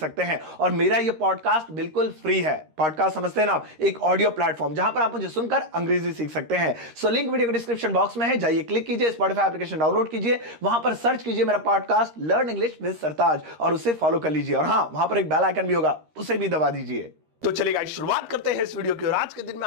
हैं। और मेरा ये पॉडकास्ट बिल्कुल फ्री है। पॉडकास्ट समझते हैं ना आप, एक ऑडियो प्लेटफॉर्म जहां पर आप मुझे सुनकर अंग्रेजी सीख सकते हैं। सो लिंक वीडियो के डिस्क्रिप्शन बॉक्स में है, जाइए क्लिक कीजिए, स्पॉटिफाई एप्लीकेशन डाउनलोड कीजिए, वहां पर सर्च कीजिए मेरा पॉडकास्ट लर्न इंग्लिश विद सरताज और उसे फॉलो कर लीजिए। और हां, वहां पर एक बेल आइकन भी होगा, उसे भी दबा दीजिए। तो चलिए गाइस, शुरुआत करते हैं इस वीडियो की। और आज के दिन मैं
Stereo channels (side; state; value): left; late; 13 ms